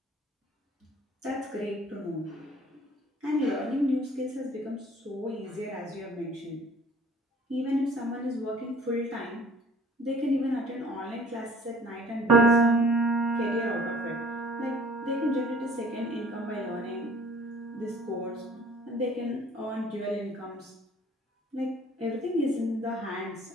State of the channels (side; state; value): both; normal; correlation 0.52